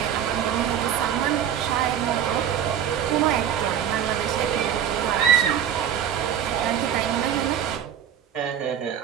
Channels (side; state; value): left; quieter; 9.4 dB